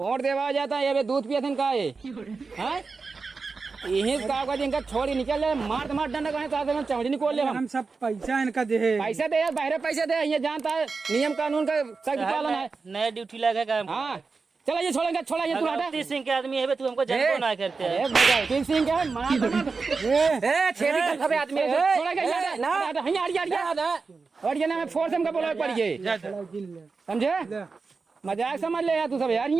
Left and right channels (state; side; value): quieter; left; 4.5 dB